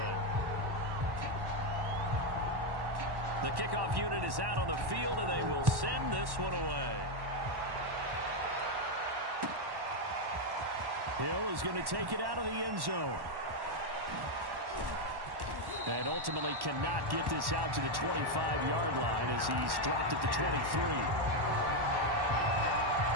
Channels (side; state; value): left; late; 1.1 ms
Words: The kickoff unit is out on the field, and they will send this one away. Hill is going to take it out of the end zone. And ultimately cannot get this out to the 25-yard line as he's dropped at the 23.